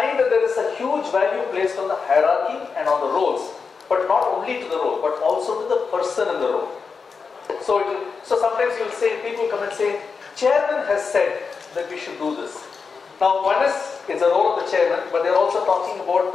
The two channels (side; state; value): right; quieter; 5.2 dB